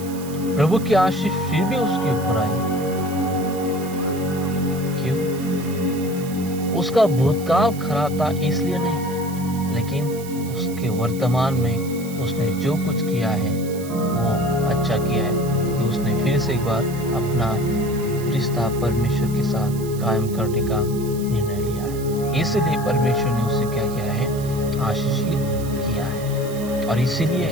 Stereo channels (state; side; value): noise; right; hiss, 16 dB below the sound